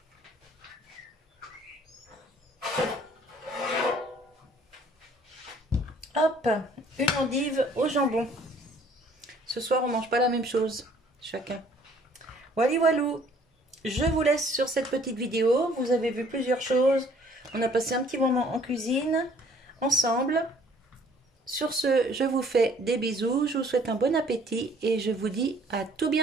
hop, une endive au jambon. Ce soir, on mange pas la même chose, chacun. Voilà, walou. Je vous laisse sur cette petite vidéo. Vous avez vu plusieurs choses. On a passé un petit moment en cuisine ensemble. Sur ce, je vous fais des bisous. Je vous souhaite un bon appétit et je vous dis à tout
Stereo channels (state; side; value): normal; both; correlation 0.58